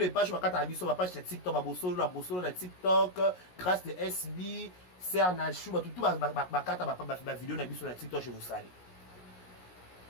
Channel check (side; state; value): right; late; 17 ms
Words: pages, ma carte sur ma page TikTok, la bossolo, la TikTok, grâce de SB, Cernachou, tout ma carte, ma vidéo sur la TikTok, je vous salue.